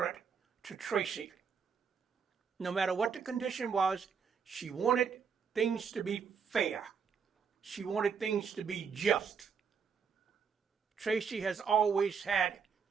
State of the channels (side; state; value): left; quieter; 6.3 dB